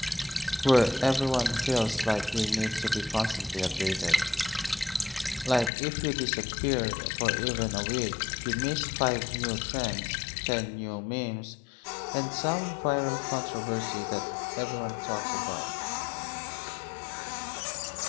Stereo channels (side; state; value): right; drops out; at 5.7 s